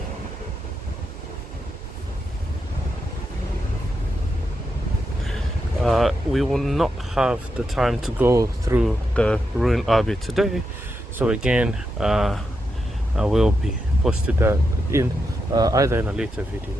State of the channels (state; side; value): normal; both; correlation 0.85